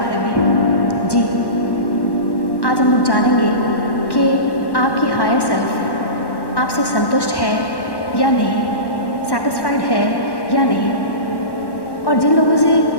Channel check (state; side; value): late; right; 1.1 ms